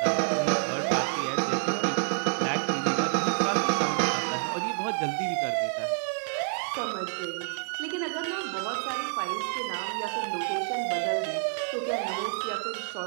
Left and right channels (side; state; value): left; silent; 59 dB below the other